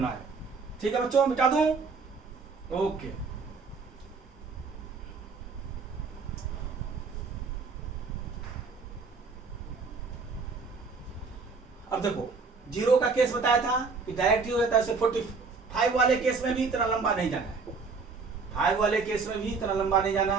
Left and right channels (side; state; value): left; quieter; 4.7 dB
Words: आए। ठीक है बच्चों, मिटा दूं? ओके। अब देखो, 0 का केस बताया था कि डायरेक्ट ही होता है, 45 वाले केस में भी इतना लंबा नहीं जाना है, 5 वाले केस में भी इतना लंबा नहीं जाना